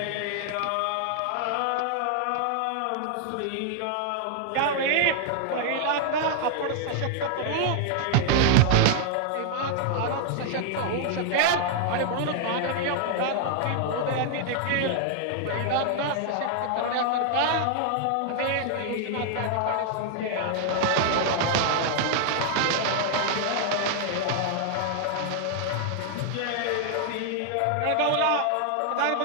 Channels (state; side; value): different; both; correlation 0.00